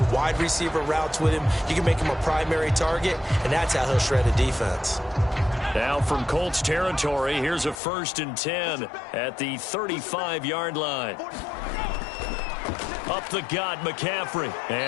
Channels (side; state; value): right; drops out; at 7.8 s